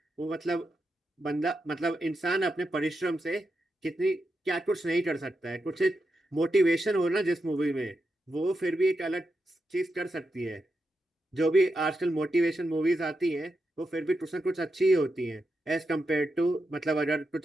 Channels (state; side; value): normal; both; correlation 0.87